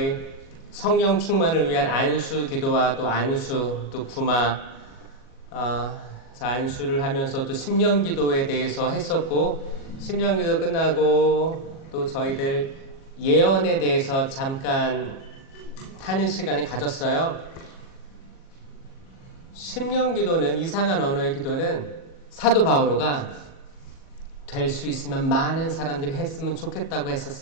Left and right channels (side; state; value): right; late; 37 ms